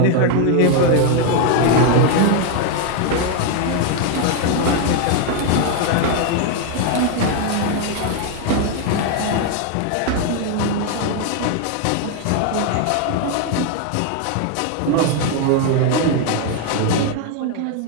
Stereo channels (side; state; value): both; different; correlation 0.01